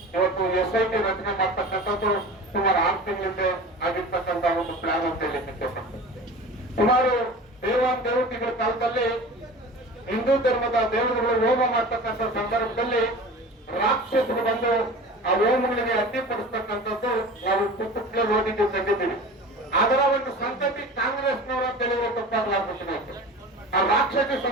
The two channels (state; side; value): normal; both; correlation 0.36